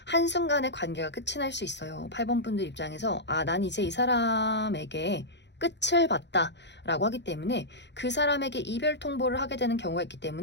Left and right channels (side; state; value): right; late; 0.51 ms